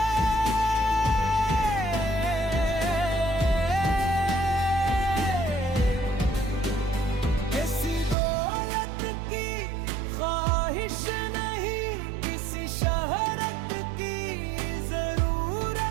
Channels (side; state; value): left; drops out; at 8.2 s